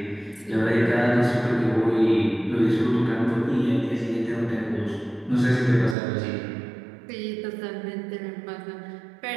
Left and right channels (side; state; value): left; drops out; at 6.0 s